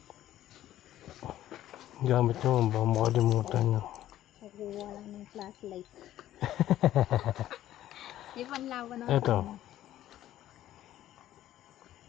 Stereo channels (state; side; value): quieter; right; 13.1 dB